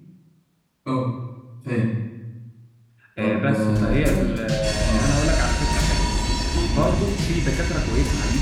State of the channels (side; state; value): both; identical; correlation 1.00